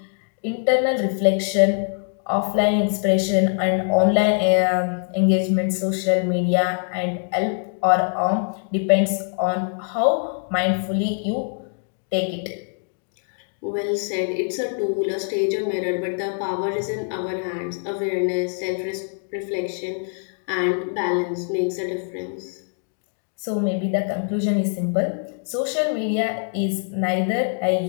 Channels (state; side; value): silent; right; 61 dB below the other